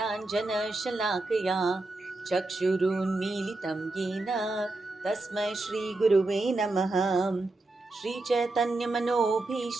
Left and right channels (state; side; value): quieter; left; 3.0 dB